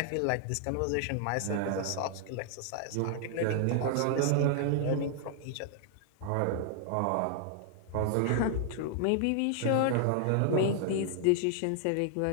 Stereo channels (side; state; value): both; different; correlation 0.00